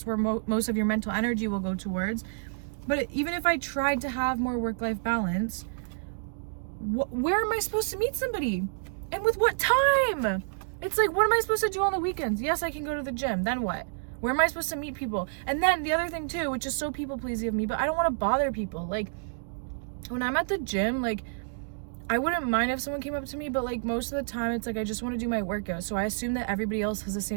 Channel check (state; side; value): silent; left; digital silence